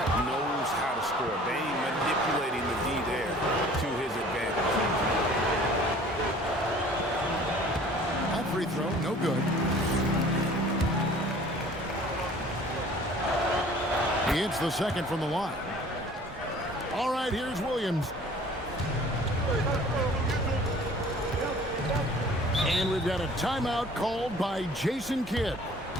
knows how to score. Bain manipulating the D there to his advantage. That free throw, no good. He hits the second from the line. All right, here's Williams. And we've got a timeout called by Jason Kidd.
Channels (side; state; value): both; normal; correlation 0.50